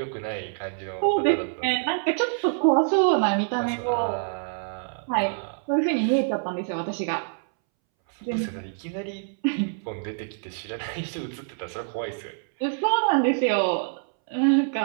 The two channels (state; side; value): silent; left; 61 dB below the other